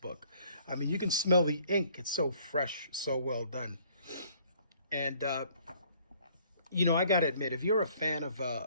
I mean, you can smell the ink. It's so fresh, so well done. And you know, I gotta admit, if you're a fan of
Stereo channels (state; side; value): inverted; both; correlation -0.59